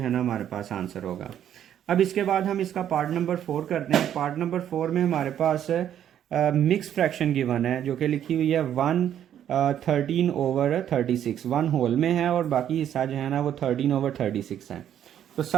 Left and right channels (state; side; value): quieter; left; 10.2 dB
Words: है ना हमारे पास आंसर होगा। अब इसके बाद हम इसका पार्ट नंबर 4 करते हैं। पार्ट नंबर 4 में हमारे पास मिक्स फ्रैक्शन गिवन है, जो कि लिखी हुई है 1/13/36। 1 होल में है और बाकी हिस्सा जो है ना वो 13/36 है। तो